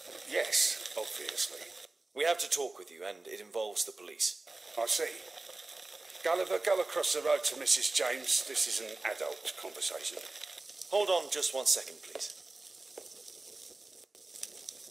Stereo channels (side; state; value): left; quieter; 3.1 dB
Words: Yes, obviously. We have to talk with you, and it involves the police. I see. Gulliver, go across the road to Mrs. James. This is an adult conversation. Hold on just 1 second, please.